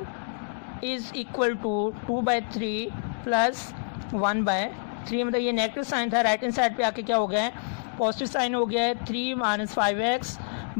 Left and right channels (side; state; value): right; silent; digital silence